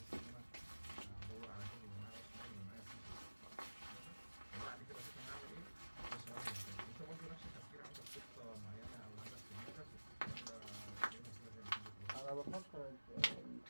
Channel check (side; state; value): both; inverted; correlation -1.00